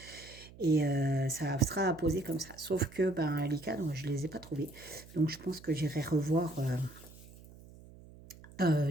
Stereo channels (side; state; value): right; noise; hum, 20 dB below the sound